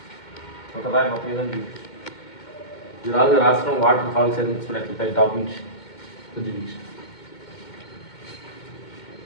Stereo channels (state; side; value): late; right; 2.2 ms